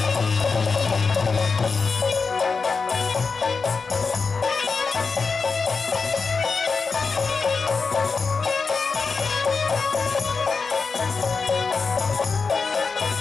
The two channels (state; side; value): quieter; right; 4.8 dB